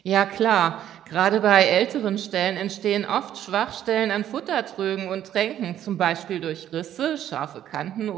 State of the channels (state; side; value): quieter; left; 11.2 dB